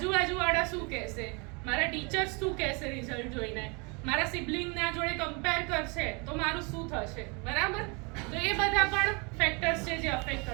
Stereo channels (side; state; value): left; quieter; 31.2 dB